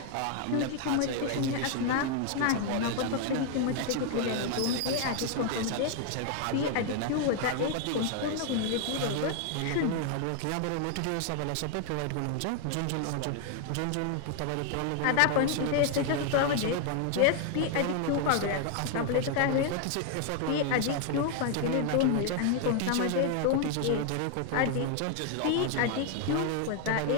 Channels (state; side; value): different; both; correlation 0.00